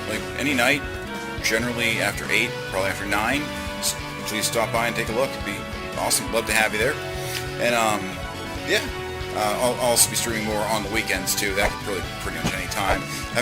like, any night, generally after 8, probably after 9. So please stop by and take a look. It'd be awesome. Love to have you there. And, yeah. I'll also be streaming more on the weekends, too. That could really pretty much any time.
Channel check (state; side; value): identical; both; correlation 1.00